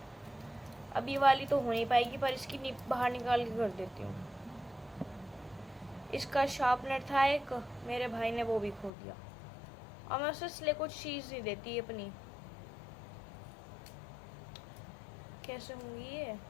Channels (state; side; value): drops out; right; at 8.9 s